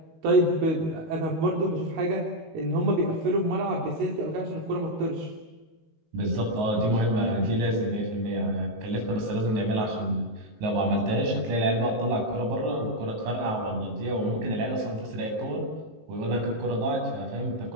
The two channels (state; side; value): late; left; 19 ms